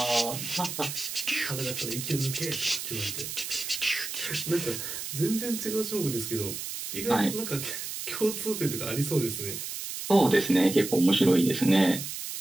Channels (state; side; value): noise; right; hiss, 6 dB below the sound